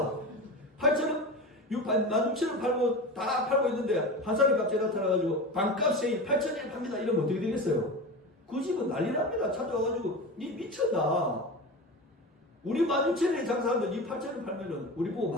8,000원 16,000원 팔고 다 팔고 있는데 한 사람이 갑자기 나타나가지고 반값 세일 8,000원에 팝니다. 이러면 어떻게 되겠어요? 그 집은 난리 납니다. 찾아와가지고 니 미쳤나? 우리 16,000원에 장사하는데 니 8,000원 팔면은 우리 보고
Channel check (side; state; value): both; normal; correlation 0.27